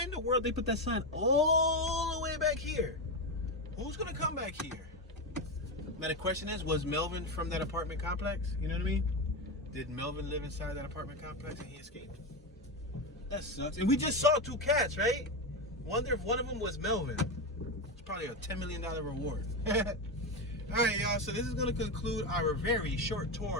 in the world they put that sign all the way back here? Who's gonna come back here? Now the question is, was Melvin from that apartment complex? You know what I mean? Did Melvin live inside that apartment complex and he escaped? That sucks. And we just saw 2 cats, right? Wonder if one of them was Melvin. It's probably a $10 million reward. Alright, y'all. So this is going to conclude our very short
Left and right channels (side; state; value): both; normal; correlation 0.14